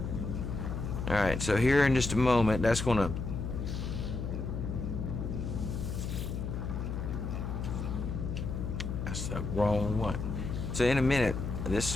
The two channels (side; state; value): left; noise; hum, 4 dB below the sound